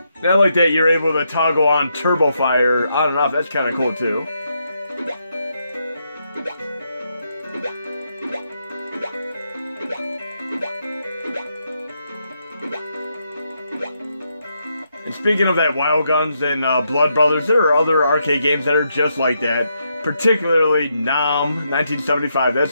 Now like that, you're able to toggle on turbo fire on and off. That's kind of cool too. And speaking of that, Wild Guns and Blood Brothers, there are other arcade games that are just like that. Particularly Nom 1975.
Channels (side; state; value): both; inverted; correlation -0.80